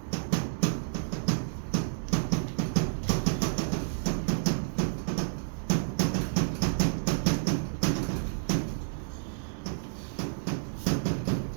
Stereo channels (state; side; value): silent; left; 58 dB below the other